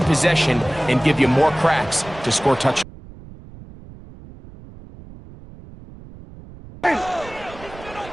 possession and give you more cracks to score touchdowns.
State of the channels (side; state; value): right; noise; rumble, 18 dB below the sound